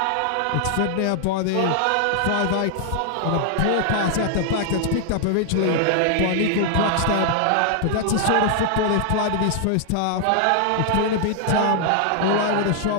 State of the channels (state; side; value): different; both; correlation 0.00